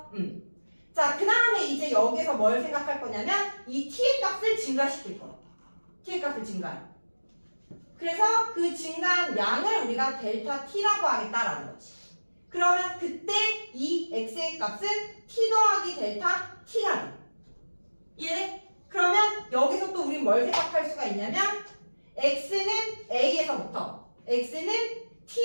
자, 그 다음에 이제 여기서 뭘 생각할 거냐면 이 t의 값을 증가시킬 거야. t의 값을 증가해. 그래서 그 증가한 양을 우리가 델타 t라고 하겠다라는 거지. 그러면 그때 이 x의 값은 t 더하기 델타 t가 돼. 이해돼? 그러면 여기서 또 우린 뭘 생각할 수가 있냐면 x는 a에서부터 x는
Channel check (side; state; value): both; inverted; correlation -1.00